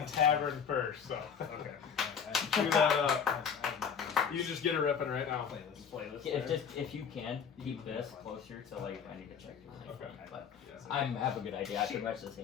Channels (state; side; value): quieter; right; 7.0 dB